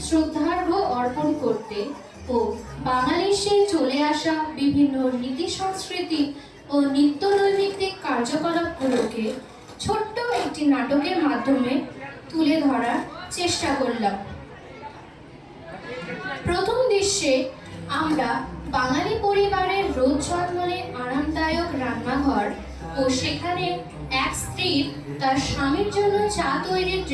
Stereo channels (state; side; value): identical; both; correlation 1.00